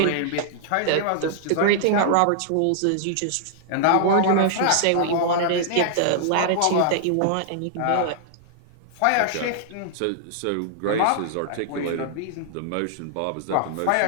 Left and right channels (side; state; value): both; different; correlation -0.01